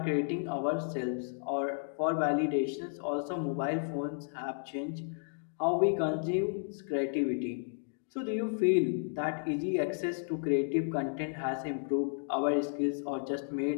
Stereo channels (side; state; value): right; silent; digital silence